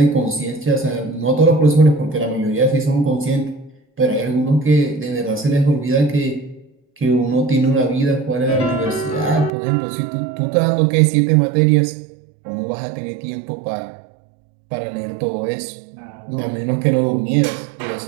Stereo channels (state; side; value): drops out; left; at 9.5 s